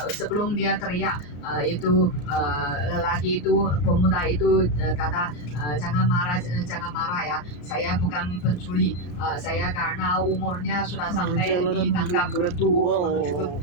sebelum dia teriak, itu lelaki itu, pemuda itu kata, jangan marah ya, saya bukan pencuri. Saya karena umurnya sudah sampai ditangkap menuju ke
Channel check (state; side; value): late; right; 34 ms